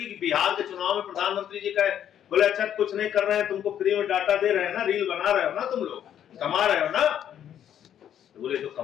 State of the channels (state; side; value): quieter; right; 10.0 dB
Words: कि बिहार के चुनाव में प्रधानमंत्री जी कहे, बोले अच्छा कुछ नहीं कर रहे हैं, तुमको फ्री में डाटा दे रहे हैं ना, रील बना रहे हो ना, तुम लोग कमा रहे हो ना। तो बोले तो